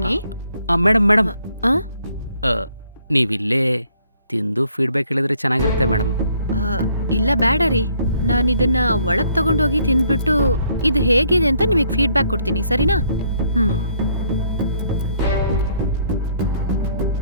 ಮೇಡಮ್ ಆ? ನೀವಿಲ್ಲೇ ತಿಂದು ಫೀಡ್ಬ್ಯಾಕ್ ಹೇಳಿದ್ರೆ ಚೆನ್ನಾಗಿರುತ್ತೆ ಮೇಡಮ್. ಇಲ್ಲ ಬೇಡ ರೀ, ನಾನು ಇದನ್ನ ಒಳಗ್ ತಗೊಂಡೋಗಿ ತಿಂದ್ಬಿಟ್ಟು ಇದು ಹೇಗಿದೆ ಅಂತ ನಿಮಗೆ ಫೀಡ್ಬ್ಯಾಕ್ ಕೊಡ್ತೀನಿ, ಸರಿನಾ? ಹ್ಮ್.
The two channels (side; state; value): both; inverted; correlation -0.66